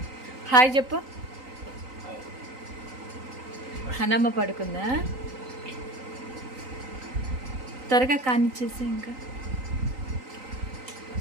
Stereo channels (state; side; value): late; left; 3.9 ms